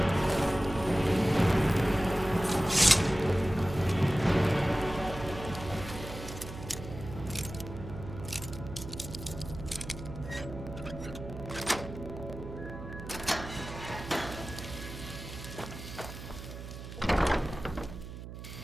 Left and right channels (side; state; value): right; noise; hum, 11 dB below the sound